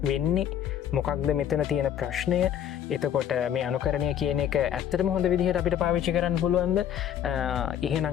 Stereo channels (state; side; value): quieter; right; 9.9 dB